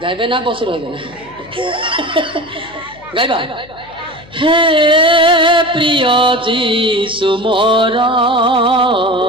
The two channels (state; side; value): noise; left; hum, 24 dB below the sound